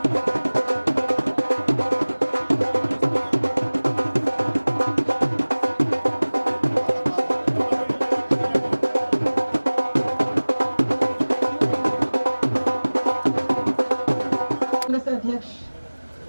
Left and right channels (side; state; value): both; inverted; correlation -1.00